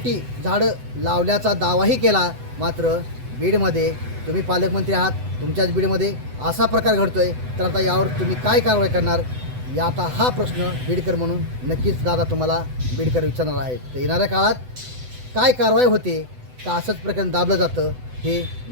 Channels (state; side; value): late; left; 7.9 ms